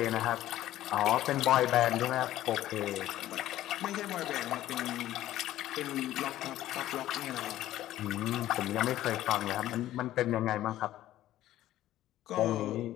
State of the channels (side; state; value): right; quieter; 13.9 dB